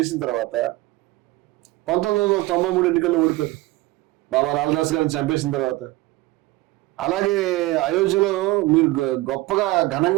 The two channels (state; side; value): quieter; left; 19.4 dB